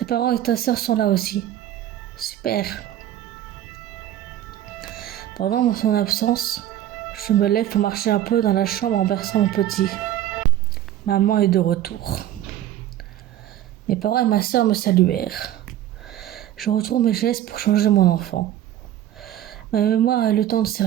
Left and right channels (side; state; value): left; quieter; 12.2 dB